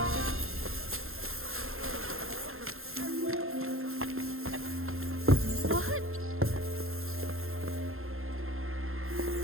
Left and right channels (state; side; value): late; left; 0.61 ms